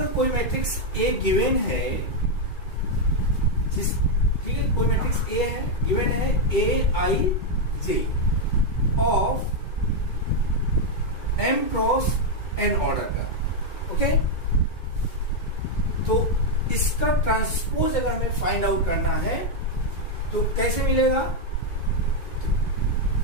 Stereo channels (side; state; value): right; late; 2.2 ms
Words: कोई मैट्रिक्स A गिवन है, जिस ठीक है, कोई मैट्रिक्स A है, गिवन है Aij of M cross N order का। ओके, तो इसका ट्रांसपोज अगर हमें फाइंड आउट करना है तो कैसे मिलेगा?